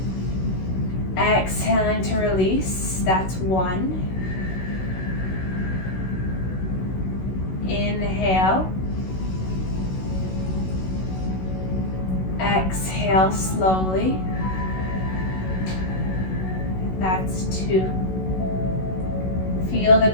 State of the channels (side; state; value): right; late; 16 ms